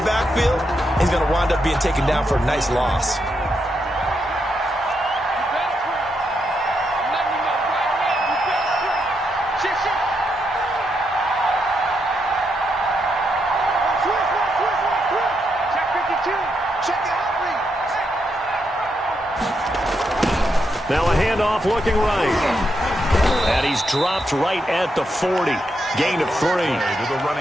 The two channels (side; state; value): both; normal; correlation 0.81